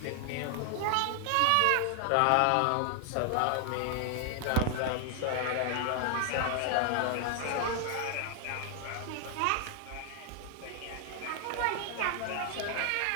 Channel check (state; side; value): different; both; correlation 0.00